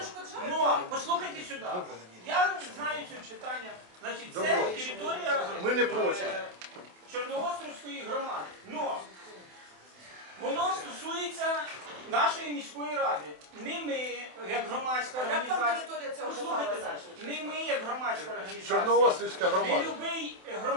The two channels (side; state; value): left; late; 27 ms